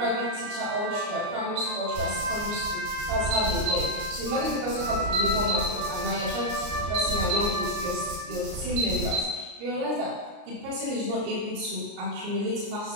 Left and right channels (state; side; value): late; left; 34 ms